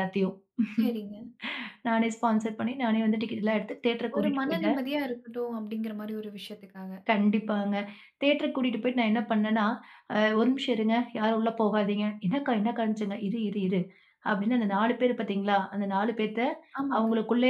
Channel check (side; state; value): both; identical; correlation 1.00